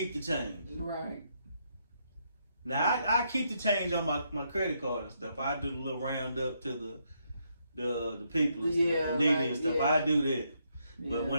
the change. Right. Now I keep the change on my credit card and stuff. I do the little round up to the people and stuff, the needy and stuff. Yeah. I do that. Yeah. But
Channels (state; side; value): inverted; both; correlation -0.76